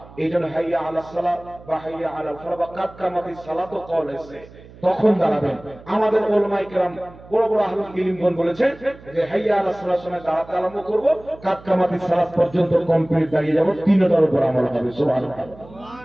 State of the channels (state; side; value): noise; right; hum, 21 dB below the sound